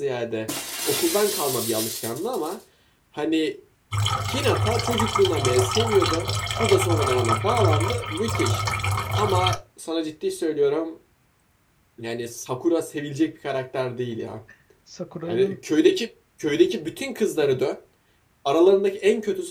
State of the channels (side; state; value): both; identical; correlation 1.00